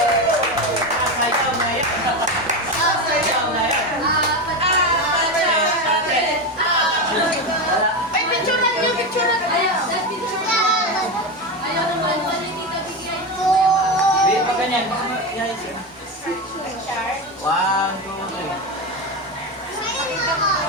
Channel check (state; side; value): normal; both; correlation 0.16